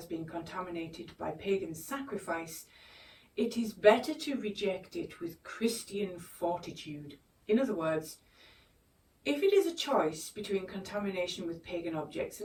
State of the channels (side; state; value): both; identical; correlation 1.00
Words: been contaminated by pagan sacrifice, it is better to reject it with Christian fortitude. In other words, if it is a choice between contamination with pagan objects